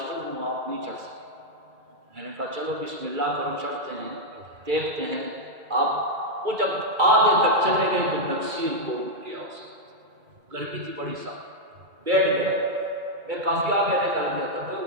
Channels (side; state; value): left; late; 2.3 ms